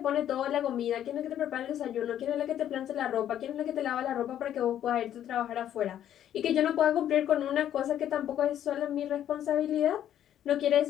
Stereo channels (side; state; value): right; quieter; 10.8 dB